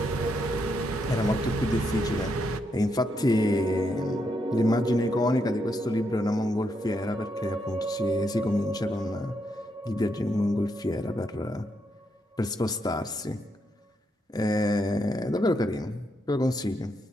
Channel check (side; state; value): both; normal; correlation 0.79